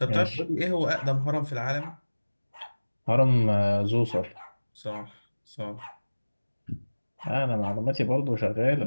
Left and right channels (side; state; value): both; inverted; correlation -1.00